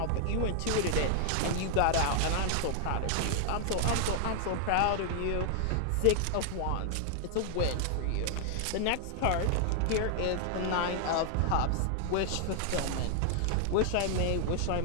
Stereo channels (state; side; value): different; both; correlation 0.00